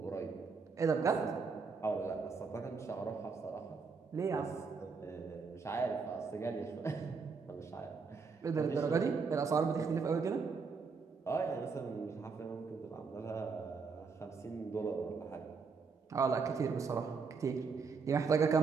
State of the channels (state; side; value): quieter; left; 5.0 dB